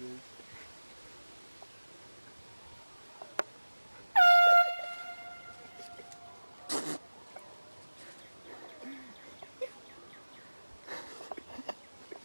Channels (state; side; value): inverted; both; correlation -1.00